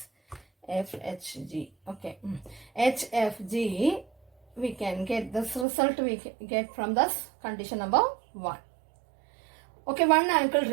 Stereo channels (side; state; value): left; drops out; at 5.7 s